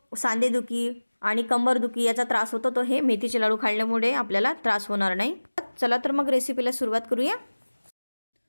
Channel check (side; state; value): both; inverted; correlation -1.00